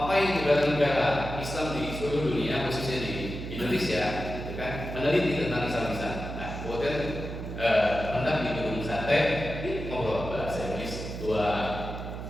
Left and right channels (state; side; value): noise; right; hum, 7 dB below the sound